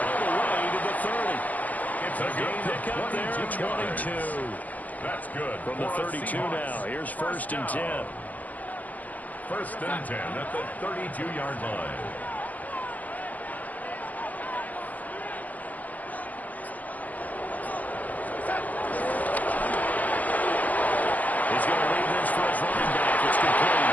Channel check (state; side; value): late; right; 0.079 ms